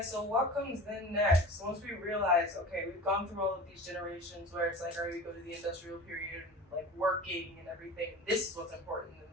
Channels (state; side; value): normal; both; correlation 0.36